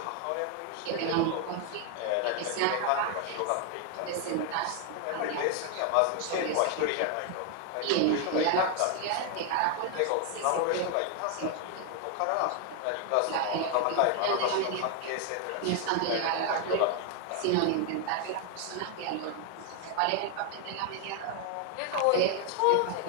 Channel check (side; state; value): both; different; correlation 0.01